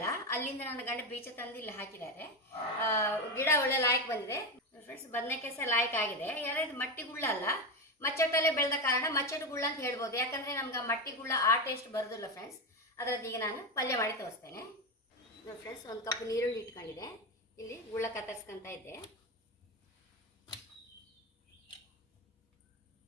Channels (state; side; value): normal; both; correlation 0.15